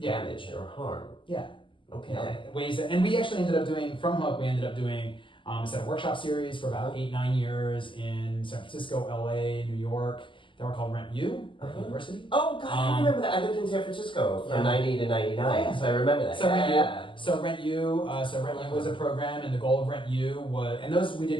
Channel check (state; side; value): late; right; 0.25 ms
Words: or harm. Yeah. Okay. Ways that, and we actually ended up doing from Hook. We ended up doing a set of workshop series for about 8-9 years in San Francisco, LA, New York. They were called RentU University. Oh God, I remember that. I lived in San Francisco from 90 to 99, so I remember that. So RentU was a program, and the goal of RentU was, and those we